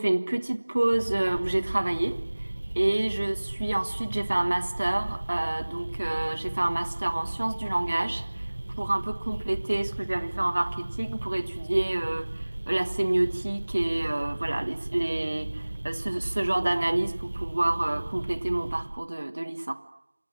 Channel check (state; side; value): inverted; both; correlation -1.00